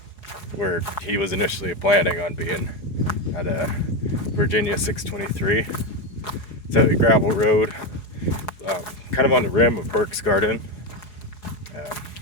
where he was initially planning on being at Virginia 623. It's at a gravel road, kind of on the rim of Burke's Garden,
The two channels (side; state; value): right; late; 5.1 ms